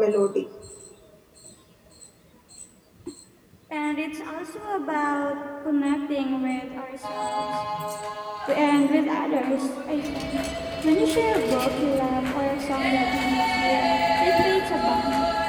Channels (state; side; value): identical; both; correlation 1.00